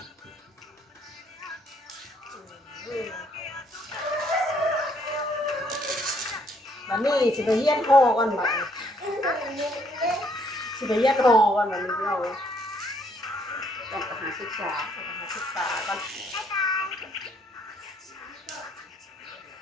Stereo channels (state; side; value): normal; both; correlation 0.68